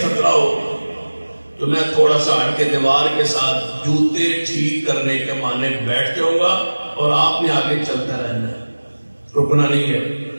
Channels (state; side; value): inverted; both; correlation -1.00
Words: خطرہ ہو تو میں تھوڑا سا ہٹ کے دیوار کے ساتھ جوتے ٹھیک کرنے کے معنی بیٹھ جاؤں گا اور آپ نے آگے چلتا رہنا ہے، رکنا نہیں ہے،